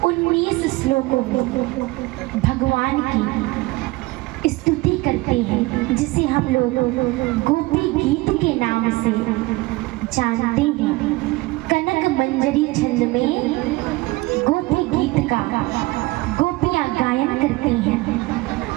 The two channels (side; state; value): left; quieter; 21.4 dB